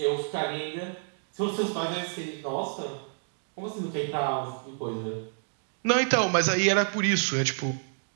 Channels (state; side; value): silent; left; digital silence